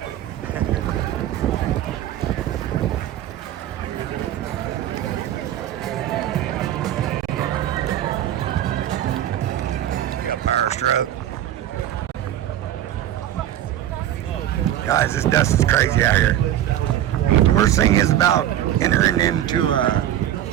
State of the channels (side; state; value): left; quieter; 12.0 dB